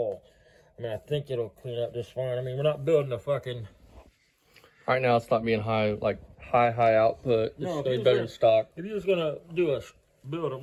I mean, I think it'll clean up just fine. I mean, we're not building a fucking... Right now, it's not being high, like high output. No, it's better than stock. If you're just gonna build a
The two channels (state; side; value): identical; both; correlation 1.00